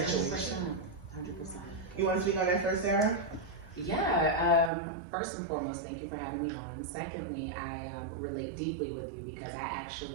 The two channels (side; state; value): left; drops out; at 4.7 s